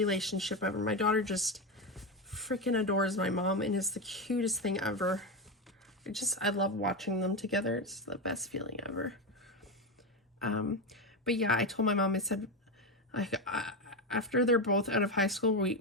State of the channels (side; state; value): both; normal; correlation 0.14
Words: ever. My daughter just freaking adores my mom and it's the cutest thing ever. I love watching them together. It's the best feeling ever. But yeah, I told my mom, I said, after they're both out of high school,